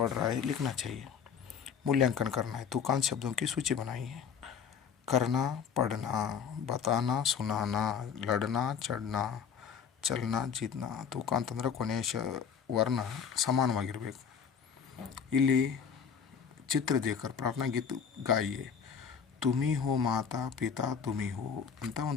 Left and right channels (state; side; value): quieter; right; 7.1 dB